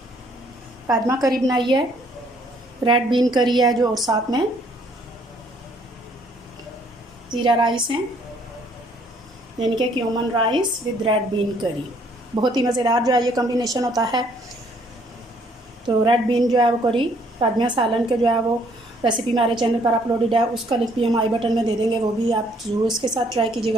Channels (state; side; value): normal; both; correlation 0.64